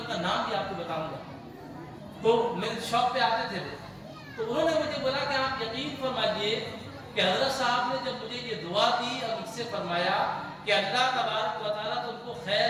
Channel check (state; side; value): identical; both; correlation 1.00